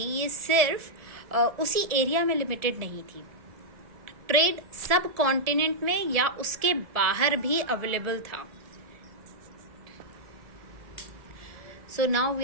ये सिर्फ उसी एरिया में लिमिटेड नहीं थी। ट्रेड सब कॉन्टिनेंट में या उसके बाहर भी अवेलेबल था। So now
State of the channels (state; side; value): late; left; 1.7 ms